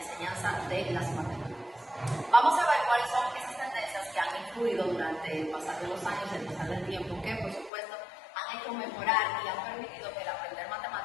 de las matemáticas. Vamos a ver cuáles son esas tendencias que han influido durante el pasar de los años, el pasar del tiempo, que por supuesto han hecho mejorar y han permitido que el aprender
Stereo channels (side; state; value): right; drops out; at 7.7 s